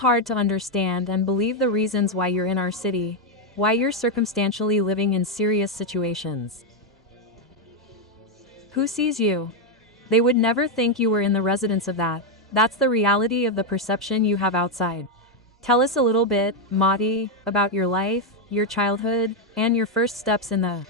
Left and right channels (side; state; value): both; normal; correlation 0.02